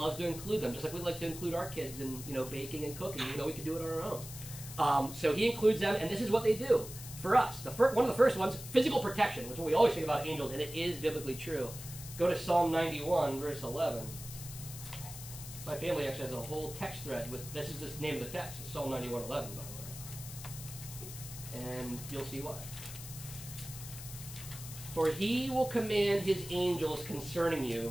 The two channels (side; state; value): left; noise; hiss, 12 dB below the sound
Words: to include them, just like we like to include our kids in baking and cooking. We can do it on our own. So he includes them, and this is what they do for us. One of the first ones, physical protection, which is what we always think about angels, and it is biblically true. Go to Psalm 91, verse 11. My family actually has a whole text thread with, this is the name of the text. It's Psalm 91:11, by the way. And you'll see why. For he will command his angels concerning you